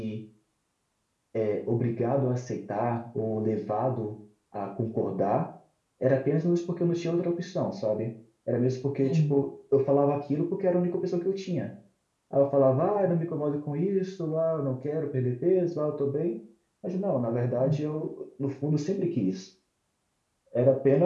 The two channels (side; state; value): both; identical; correlation 1.00